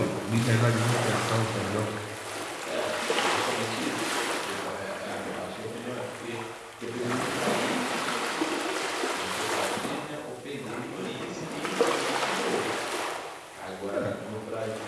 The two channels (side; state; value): both; identical; correlation 1.00